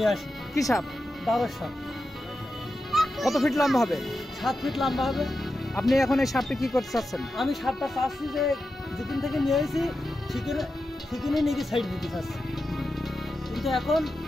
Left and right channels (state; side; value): normal; both; correlation 0.90